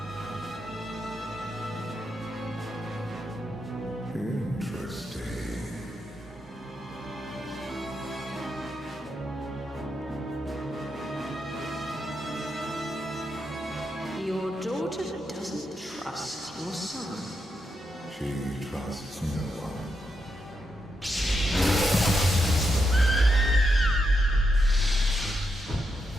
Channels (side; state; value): both; normal; correlation 0.84